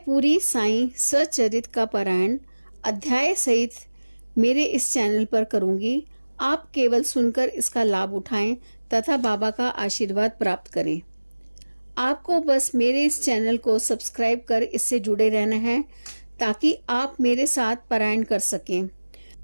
पूरी साईं सच्चरित का पारायण अध्याय सहित मेरे इस चैनल पर करूंगी। आप केवल सुनकर इसका लाभ उठाएं तथा बाबा का आशीर्वाद प्राप्त करें। आपको बस मेरे इस चैनल को सब्सक्राइब कर इससे जुड़े रहना है ताकि आप मेरे साथ पारायण कर सकें।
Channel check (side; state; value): both; inverted; correlation -1.00